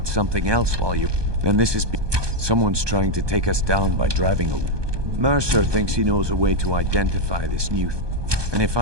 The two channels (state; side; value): late; left; 1.2 ms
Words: something else while you... And this is... Someone's trying to take us down by driving a... Mercer thinks he knows a way to identify this new... And if